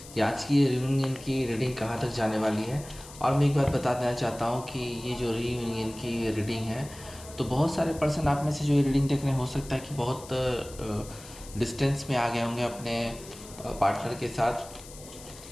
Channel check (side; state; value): left; noise; hiss, 17 dB below the sound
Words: कि आज की ये रियूनियन की रीडिंग कहाँ तक जाने वाली है। और मैं एक बात बता देना चाहता हूँ कि ये जो रीयूनियन की रीडिंग है, तो बहुत सारे पर्सन आप में से जो ये रीडिंग देख रहे हैं, हो सकता है कि बहुत डिस्टेंस में आ गए होंगे अपने पार्टनर के